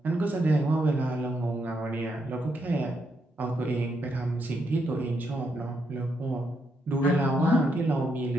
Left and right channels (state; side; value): normal; both; correlation 0.79